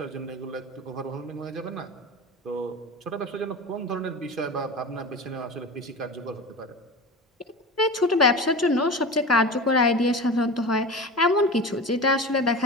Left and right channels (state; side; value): normal; both; correlation 0.30